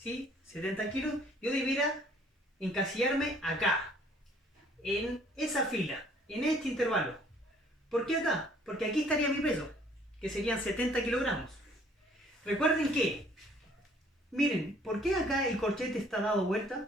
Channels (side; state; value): both; normal; correlation 0.59